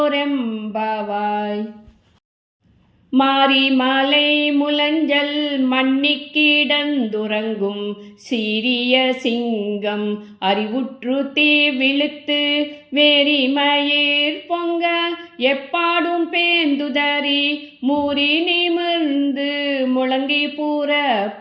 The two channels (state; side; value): identical; both; correlation 1.00